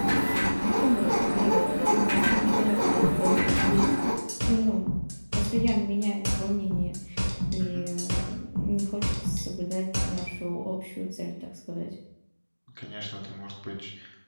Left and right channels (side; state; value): both; inverted; correlation -1.00